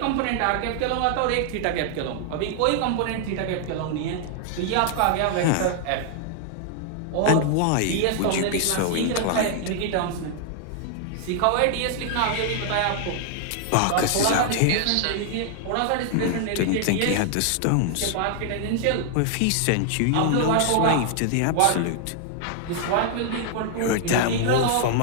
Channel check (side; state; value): both; different; correlation 0.00